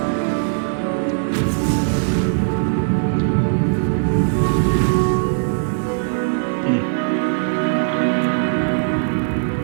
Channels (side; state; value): left; silent; digital silence